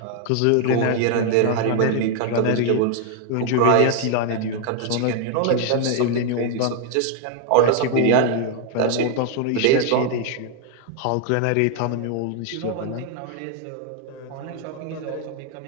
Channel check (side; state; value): both; different; correlation 0.00